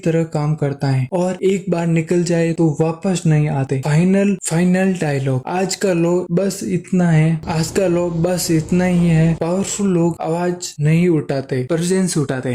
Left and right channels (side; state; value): both; identical; correlation 1.00